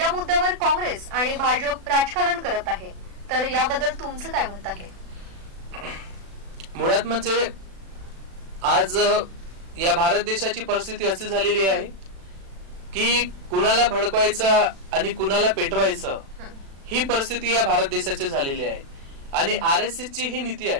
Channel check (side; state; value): left; late; 36 ms